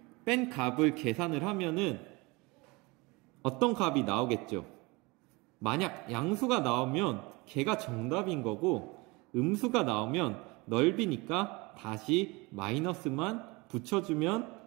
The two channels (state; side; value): quieter; left; 25.1 dB